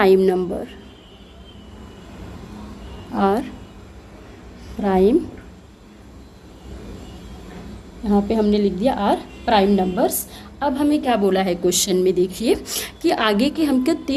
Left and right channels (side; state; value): both; identical; correlation 1.00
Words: number, are prime, यहाँ पे हमने लिख दिया आर प्राइम नंबर्स। अब हमें क्या बोला है क्वेश्चन में, देखिए कि आगे के हमको